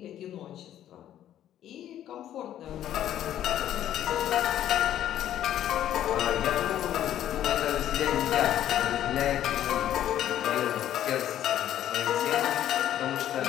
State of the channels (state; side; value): quieter; right; 11.6 dB